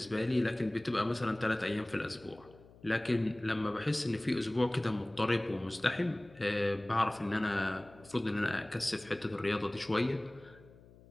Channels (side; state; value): left; noise; hum, 23 dB below the sound